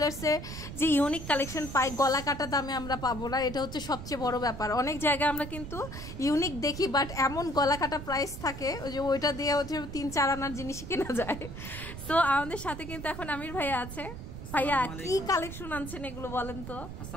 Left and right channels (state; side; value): noise; right; rumble, 9 dB below the sound